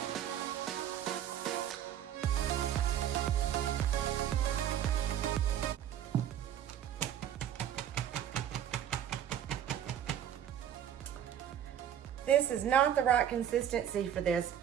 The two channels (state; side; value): quieter; left; 10.2 dB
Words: This is not the right consistency for this,